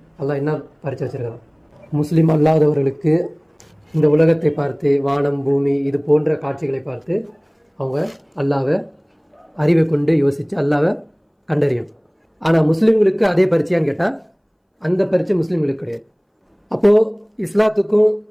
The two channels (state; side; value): identical; both; correlation 1.00